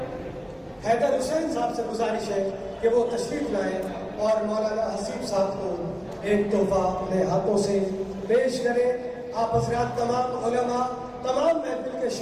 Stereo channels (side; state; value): both; identical; correlation 1.00